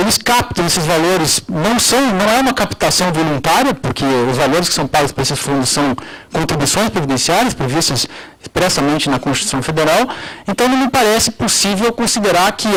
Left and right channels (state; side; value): identical; both; correlation 1.00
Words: captam esses valores, não é uma captação voluntária, porque os valores que são pagos para esses fundos são contribuições previdenciárias previstas expressamente na Constituição Federal, então não me parece possível considerar que